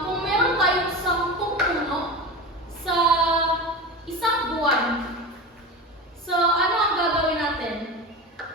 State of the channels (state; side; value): normal; both; correlation 0.26